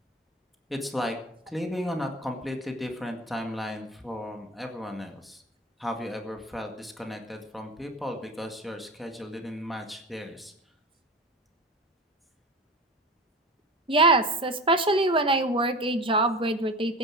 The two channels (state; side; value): normal; both; correlation 0.32